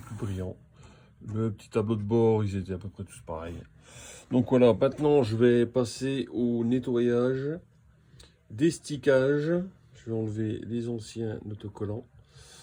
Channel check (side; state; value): both; identical; correlation 1.00